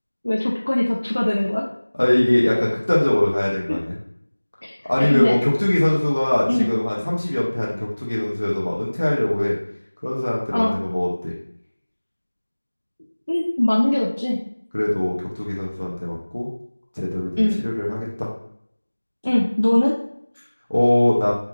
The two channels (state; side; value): inverted; both; correlation -1.00